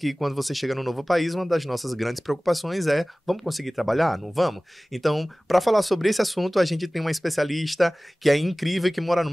quando você chega num novo país, uma das nossas grandes preocupações é: vamos conseguir trabalhar? Não vamos? Então, para falar sobre esse assunto, a gente tem uma especialista que é incrível, que mora no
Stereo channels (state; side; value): normal; both; correlation 0.98